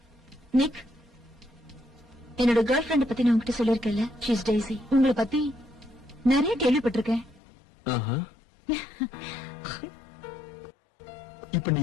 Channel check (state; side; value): drops out; right; at 7.4 s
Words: Nick, என்னோட கேர்ள் ஃபிரெண்ட் பத்தி நான் உங்ககிட்ட சொல்லிருக்கேன்ல. She is daisy. உங்களை பத்தி நிறைய கேள்விப்பட்டிருக்கேன். ஆஹா. இப்ப நீ